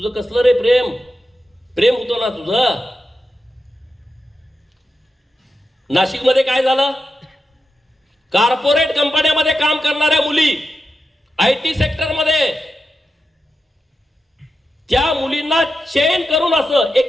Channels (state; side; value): normal; both; correlation 0.89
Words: कसलं रे प्रेम, प्रेम होतो ना तुझं. नाशिकमध्ये काय झालं, कॉर्पोरेट कंपन्यामध्ये काम करणाऱ्या मुली, आयटी सेक्टरमध्ये, त्या मुलींना चेन करून असं